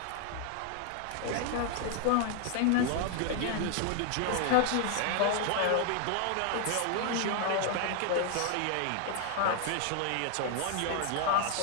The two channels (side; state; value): both; different; correlation 0.00